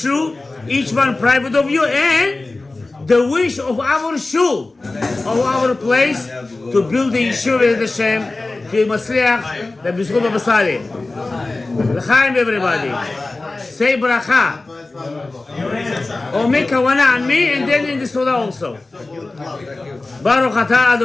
Each one private of you, and the wish of our shul, of our place, to build the yeshiva with Hashem, to Masliach, the B'zchut B'Sali. L'chaim, everybody. Say bracha. Or make kavanah on me, and then in the seudah also. Baruch atah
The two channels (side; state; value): right; quieter; 3.2 dB